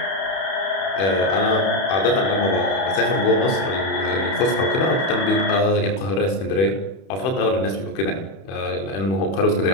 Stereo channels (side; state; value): right; late; 31 ms